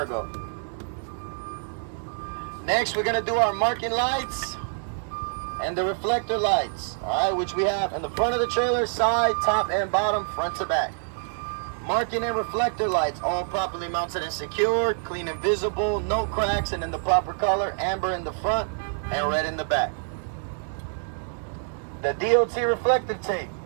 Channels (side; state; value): left; silent; digital silence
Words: Next, we're going to do our marking lights and the reflector lights, all right, which we have in the front of the trailer, side, top, and bottom, front to back. Marking and reflector lights, all properly mounted and secured, clean and visible, no cracks, and in the proper color, amber in the front and red in the back. The DOT reflective tape,